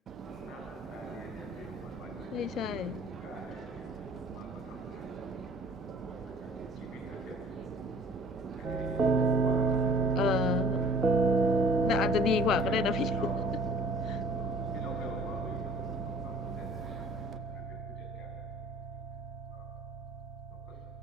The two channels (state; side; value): normal; both; correlation 0.51